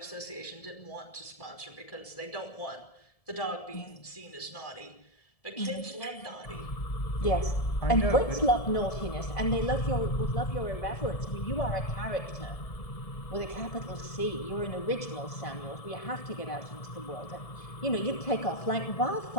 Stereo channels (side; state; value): right; late; 1.7 ms